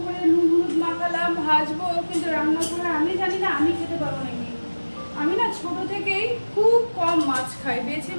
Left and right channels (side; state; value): both; inverted; correlation -1.00